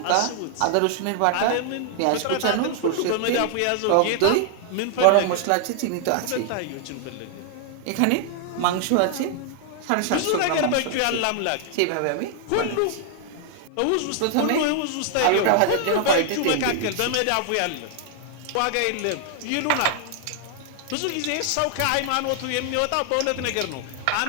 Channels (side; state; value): both; different; correlation 0.00